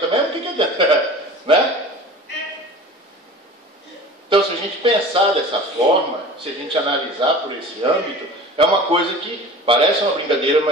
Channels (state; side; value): normal; both; correlation 0.40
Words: mesmo, o que adianta? Né? Então, se gente pensar dessa forma, se a gente analisar por esse âmbito, é uma coisa que parece uma brincadeira,